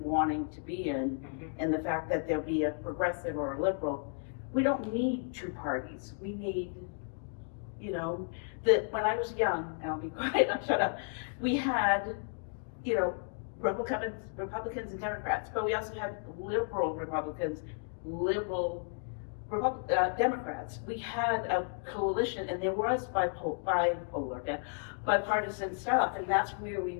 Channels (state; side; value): silent; right; 56 dB below the other